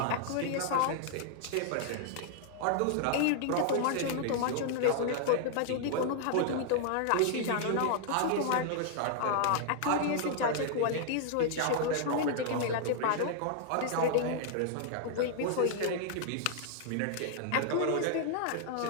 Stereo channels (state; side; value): different; both; correlation 0.00